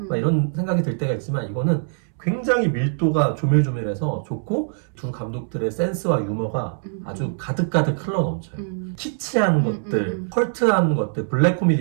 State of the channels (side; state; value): left; silent; 64 dB below the other